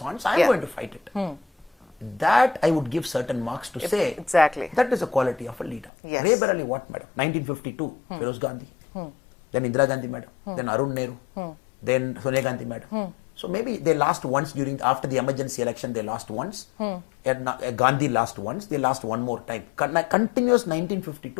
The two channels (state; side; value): drops out; right; at 5.9 s